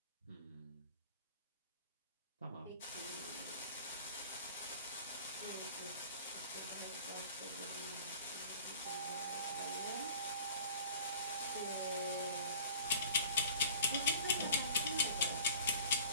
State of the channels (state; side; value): inverted; both; correlation -0.46